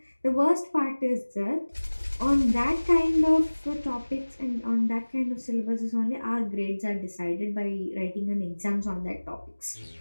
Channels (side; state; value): both; inverted; correlation -1.00